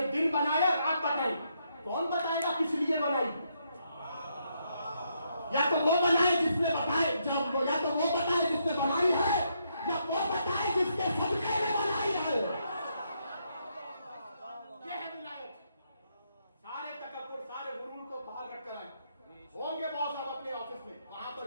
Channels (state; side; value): inverted; both; correlation -0.76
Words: دن بنایا، رات بتائی. کون بتائے گا کس لیے بنائی؟ یا تو وہ بنائے جس نے بتائے، جب یا تو وہ بتائے جس نے بنائی ہے، یا وہ بتائے جس کے صدقے میں بنائی ہے. یہ ہے ولایت. سارے تکبر، سارے غرور کو باہر رکھ کر آئیں. ہوں گے بہت صاحب اپنے آفس میں، وہاں پر